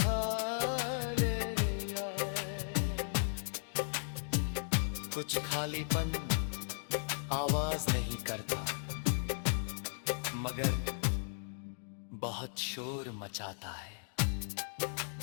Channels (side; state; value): right; silent; digital silence